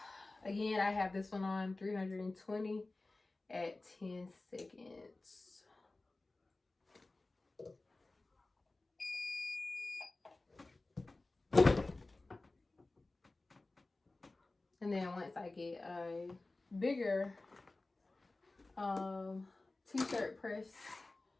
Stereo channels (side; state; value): right; quieter; 3.1 dB